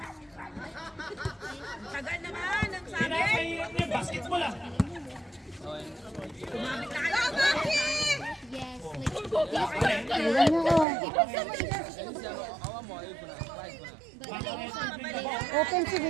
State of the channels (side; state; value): left; drops out; at 10.9 s